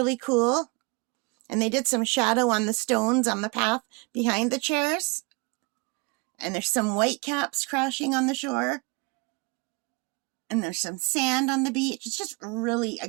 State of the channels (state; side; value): quieter; left; 29.0 dB